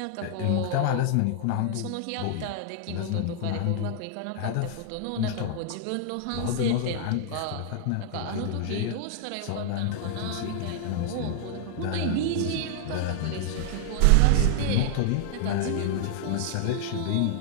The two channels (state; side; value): different; both; correlation 0.00